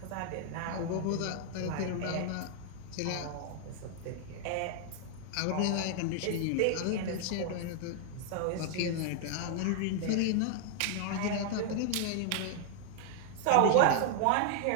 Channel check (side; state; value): both; different; correlation 0.00